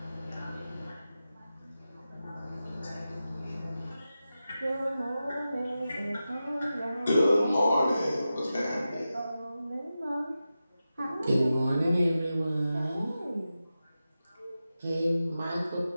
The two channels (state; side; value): inverted; both; correlation -0.92